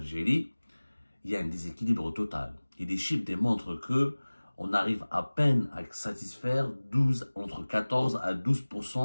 il y a un déséquilibre total. Et les chiffres démontrent que on arrive à peine à satisfaire entre 14 à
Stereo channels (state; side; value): inverted; both; correlation -1.00